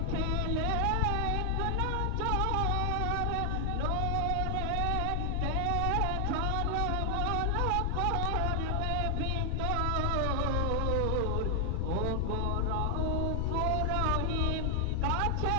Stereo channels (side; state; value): both; different; correlation 0.00